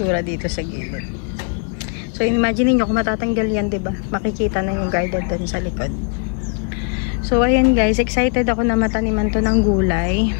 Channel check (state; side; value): quieter; right; 38.1 dB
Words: dito sa gilid. So imagine nyo kung matatanggal yan, diba? Makikita na yung garden dun sa likod. So ayan guys, excited ako na mataniman to ng gulay.